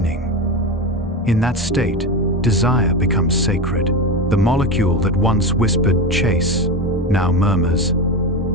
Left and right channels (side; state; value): both; normal; correlation 0.20